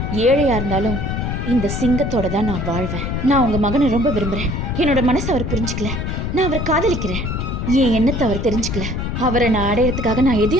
ஏழையா இருந்தாலும் இந்த சிங்கத்தோட தான் நான் வாழ்வேன். நான் உங்க மகனை ரொம்ப விரும்புறேன். என்னோட மனசை அவர் புரிஞ்சுக்கல. நான் அவரை காதலிக்கிறேன். என் எண்ணத்தை அவர் தெரிஞ்சுக்கல. அவரை நான் அடையறதுக்காக நான்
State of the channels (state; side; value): noise; left; rumble, 3 dB below the sound